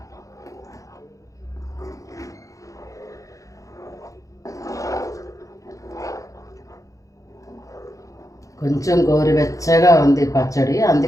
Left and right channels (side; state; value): right; late; 0.16 ms